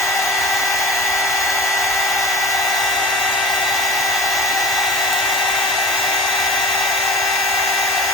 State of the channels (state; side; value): normal; both; correlation 0.38